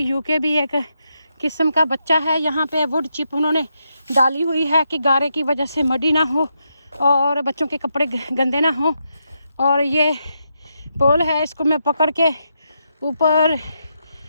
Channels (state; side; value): inverted; both; correlation -0.82